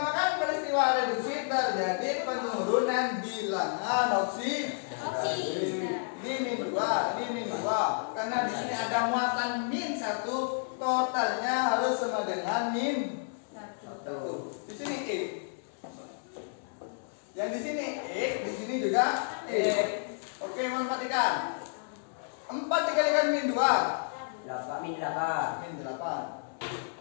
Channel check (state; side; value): silent; right; digital silence